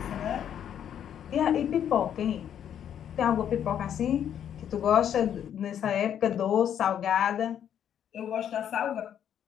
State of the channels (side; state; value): right; quieter; 9.5 dB